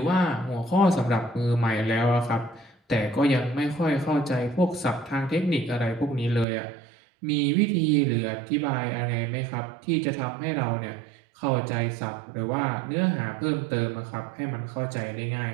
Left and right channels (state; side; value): drops out; left; at 6.5 s